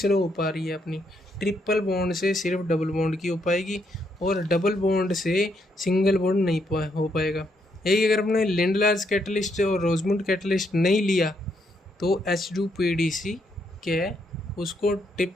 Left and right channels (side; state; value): both; normal; correlation 0.76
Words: हो पा रही है अपनी, ट्रिपल बॉन्ड से सिर्फ डबल बॉन्ड की हो पाएगी, और डबल बॉन्ड से सिंगल बॉन्ड नहीं हो पाएगा। यही अगर अपने लिंड लार्ज कैटलिस्ट और रोजमुंड कैटलिस्ट नहीं लिया तो H2PDC क्या उसको